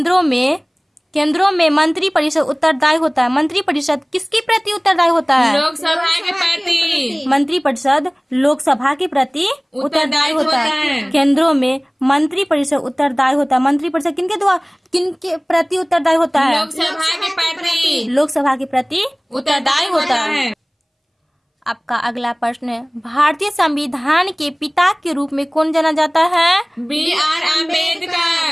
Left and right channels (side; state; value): both; identical; correlation 1.00